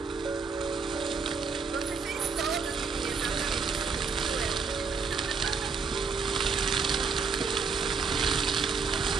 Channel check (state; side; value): quieter; left; 5.0 dB